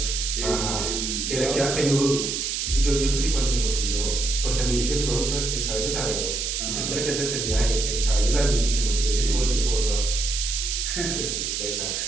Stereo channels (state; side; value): noise; right; hiss, 1 dB below the sound